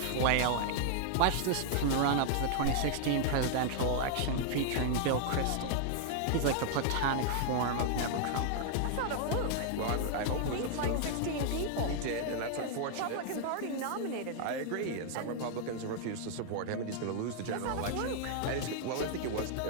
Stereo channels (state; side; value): different; both; correlation 0.00